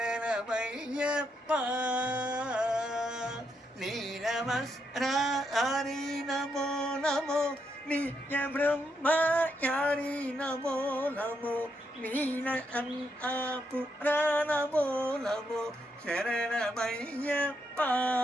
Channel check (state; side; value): normal; both; correlation 0.79